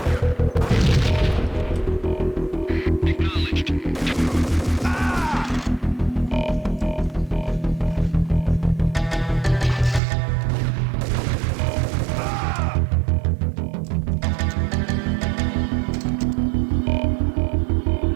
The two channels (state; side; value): drops out; left; at 10.0 s